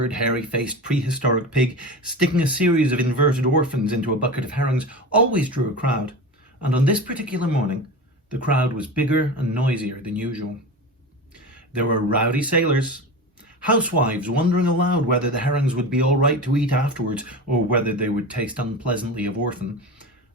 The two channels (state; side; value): normal; both; correlation 0.29